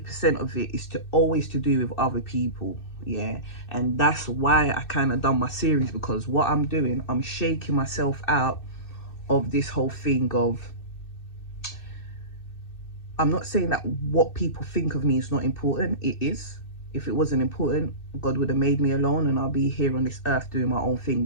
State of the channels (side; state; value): right; late; 2.6 ms